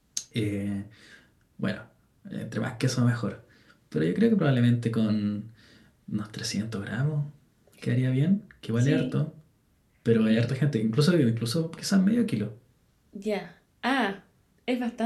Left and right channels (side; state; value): both; identical; correlation 1.00